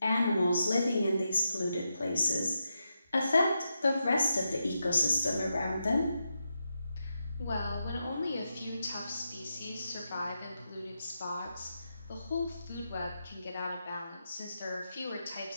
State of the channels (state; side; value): inverted; both; correlation -0.86